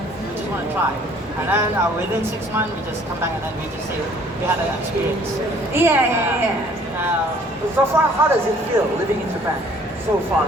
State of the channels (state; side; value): normal; both; correlation 0.57